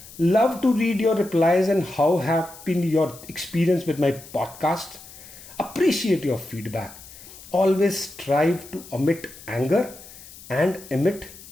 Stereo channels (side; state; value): left; noise; hiss, 18 dB below the sound